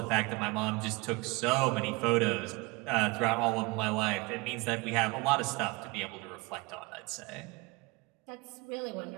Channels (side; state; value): left; quieter; 25.1 dB